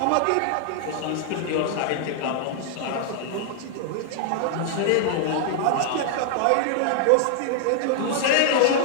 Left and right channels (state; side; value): different; both; correlation -0.01